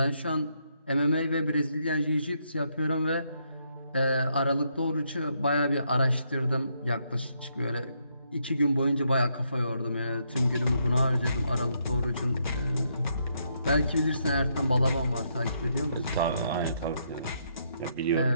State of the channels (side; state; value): both; inverted; correlation -0.76